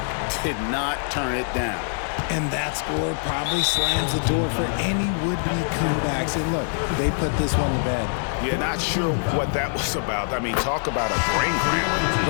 did not turn it down. And that score probably slams the door for any would-be comebacks. And look, they put this one to bed. Yeah, not sure what that was about. I mean, talk about a brain cramp.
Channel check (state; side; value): silent; right; digital silence